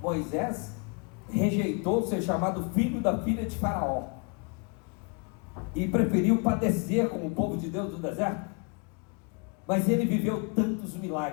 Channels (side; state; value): right; quieter; 33.2 dB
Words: Moisés rejeitou ser chamado filho da filha de Faraó e preferiu padecer com o povo de Deus no deserto. mas ele viveu tantos